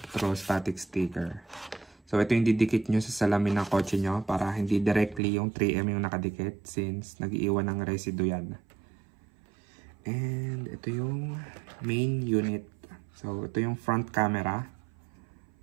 sticker. So ito yung didikit nyo sa salamin ng kotse nyo para hindi directly yung 3M yung nakadikit since nag-iiwan ng residue yan. And ito yung main unit. So ito yung front camera.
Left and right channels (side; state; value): left; drops out; at 5.2 s